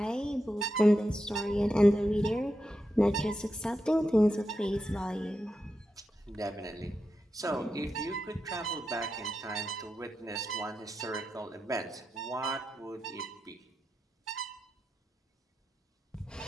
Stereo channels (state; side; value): normal; both; correlation 0.88